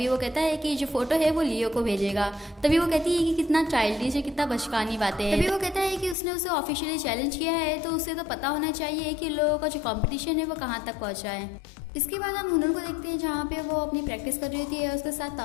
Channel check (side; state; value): right; drops out; at 6.2 s